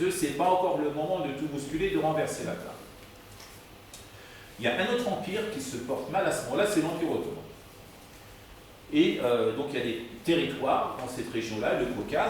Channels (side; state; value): both; identical; correlation 1.00